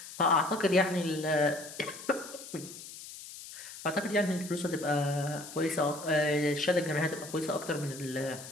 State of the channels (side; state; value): left; noise; hiss, 13 dB below the sound